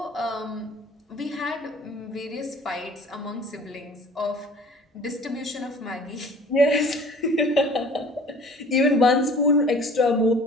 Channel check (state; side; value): normal; both; correlation 0.48